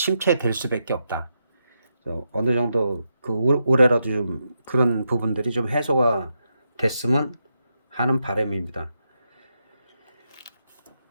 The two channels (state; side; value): inverted; both; correlation -0.84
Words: 수밖에 없다. 그래서 어느 정도 그 올해라도 좀 그런 부분들이 좀 해소가 됐으면 하는 바람입니다.